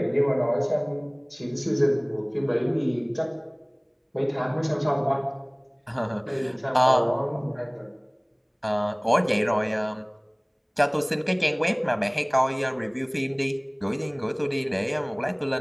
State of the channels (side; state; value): both; identical; correlation 1.00